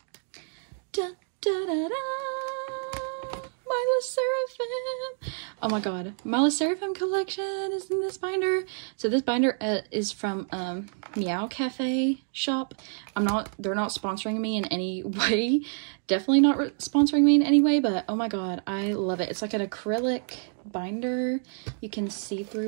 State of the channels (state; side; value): silent; left; 59 dB below the other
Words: Da, da, da, da. My sserafim. Oh my god, my sserafim collection is in this binder. So this binder is from Meow Cafe shop. They're not sponsoring me in any way. Definitely not sponsoring me in any way, but oh my god, I love it. It's like an acrylic binder. You can see